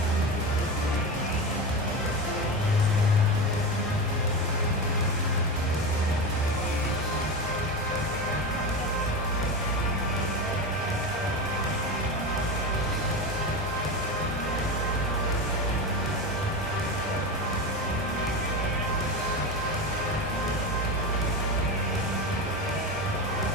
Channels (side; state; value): both; normal; correlation 0.21